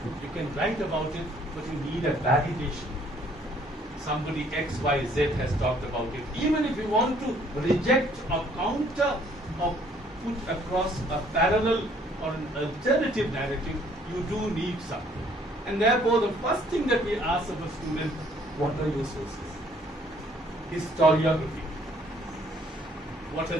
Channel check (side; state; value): both; normal; correlation 0.62